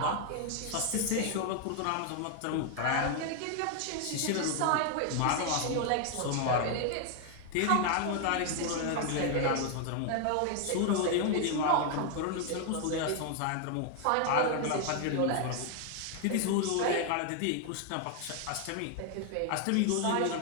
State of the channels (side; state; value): both; different; correlation 0.00